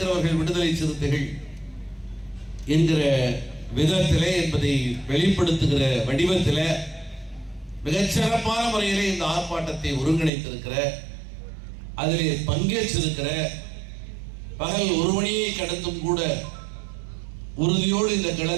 விடுதலை சிறுத்தைகள் என்கிற விதத்திலே என்பதை வெளிப்படுத்துகிற வடிவத்திலே மிகச்சிறப்பான முறையிலே இந்த ஆர்ப்பாட்டத்தை ஒருங்கிணைத்திருக்கிற, அதிலே பங்கேற்றிருக்கிற, பகல் 1 மணியை கடந்தும் கூட உறுதியோடு இந்த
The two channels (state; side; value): drops out; left; at 10.3 s